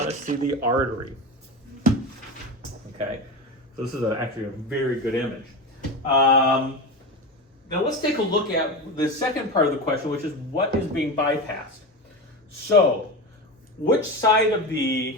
to see the artery. Okay, so this is actually a very good image. Now let's take a look at the second part of the question, which is what is being bypassed. So, which side of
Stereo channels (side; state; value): both; normal; correlation 0.22